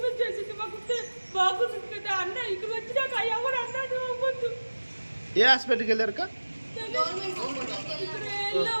చేసింది మాకు బాగుంటుంది కదా అన్న ఇక్కడ వచ్చినాక ఎవరు అన్నాడు అవ్వద్దు. ఏ హాస్పిటల్కి వెళ్ళారు?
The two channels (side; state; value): both; inverted; correlation -1.00